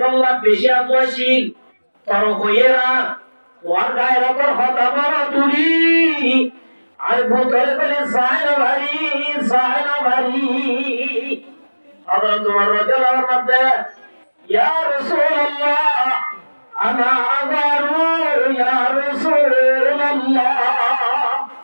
বেশি আতওয়াশীল তর হইরা তোর গায়ের উপর হতা বড় তুলি আর বুদরা বলি সাইরা চায় না বাড়ি। হযরত ওমর রাদিয়াল্লাহু আনহু বলেন, ইয়া রাসূলুল্লাহ আনা আগারু ইয়া রাসূলুল্লাহ,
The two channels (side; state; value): both; inverted; correlation -1.00